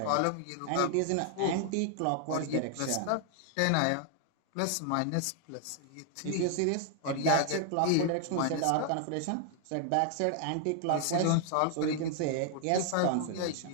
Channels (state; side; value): different; both; correlation 0.00